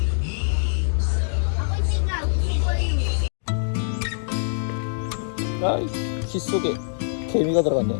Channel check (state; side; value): silent; right; digital silence